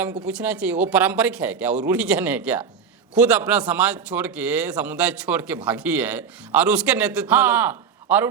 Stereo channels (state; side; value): quieter; left; 6.5 dB